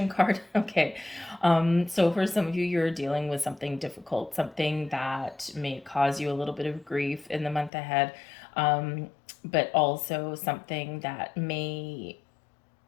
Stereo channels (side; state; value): right; drops out; at 7.7 s